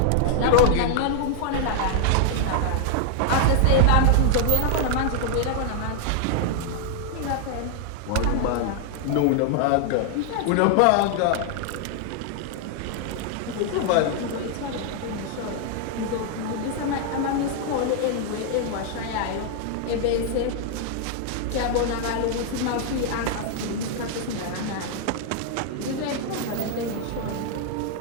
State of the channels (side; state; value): both; different; correlation 0.00